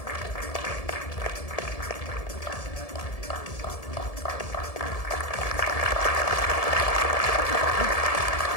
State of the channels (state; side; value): late; right; 1.7 ms